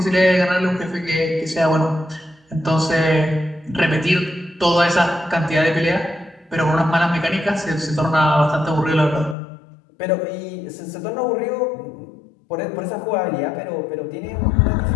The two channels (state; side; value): drops out; right; at 9.3 s